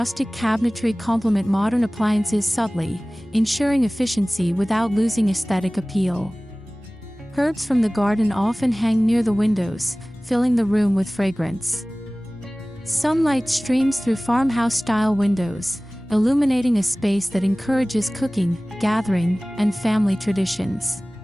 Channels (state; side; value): normal; both; correlation 0.98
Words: cabinetry complement modern appliances subtly, ensuring efficiency without losing aesthetic appeal. Herbs from the garden often hang near the windows, filling the room with fragrance. Sunlight streams through farmhouse-style windows, illuminating a space that encourages cooking, gathering, and family traditions.